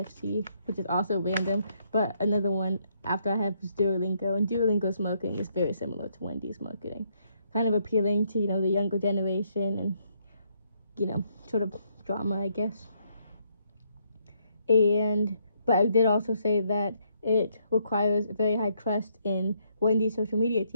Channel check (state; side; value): inverted; both; correlation -0.72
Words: which is also random, but another one after I have is Duolingo, and Duolingo's marketing is very similar to Wendy's marketing, kind of appealing to the younger generation, and sort of drama, I guess. But I did also say that it requires very high trust in Wendy's social media